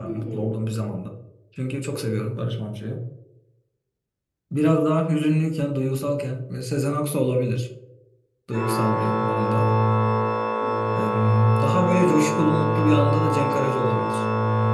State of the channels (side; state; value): both; identical; correlation 1.00